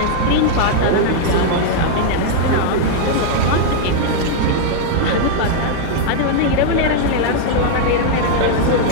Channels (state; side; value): different; both; correlation 0.00